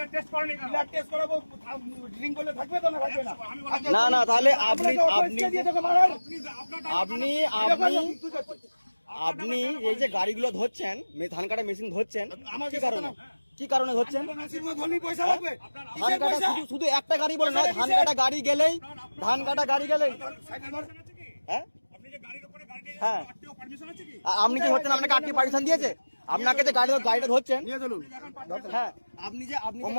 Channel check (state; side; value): inverted; both; correlation -1.00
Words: টেস্ট করেনি কেন? ব্লাড টেস্ট করাবো। ড্রিঙ্ক করলে থাকবে তো না থাকবে না? না না, তাহলে আপনি এই যে গাড়িগুলো ধরছেন, ধান কাটা মেশিন ধরছেন, কি কারণে ধরছেন? পয়সা লাগবে। ধান কাটা শুধু একটা গাড়ি বলে নয়, ধান কাটা গাড়ি গেলেই হ্যাঁ হ্যাঁ, আপনি কি হচ্ছেন? আপনাকে আরটি পারমিশন দিয়েছে? আপনাকে যে গাড়িটা ধরছেন, হ্যাঁ, আপনি